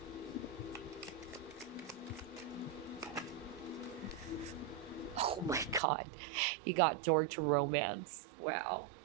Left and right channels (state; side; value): drops out; left; at 5.8 s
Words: Oh my God. You got door to romance. Wow.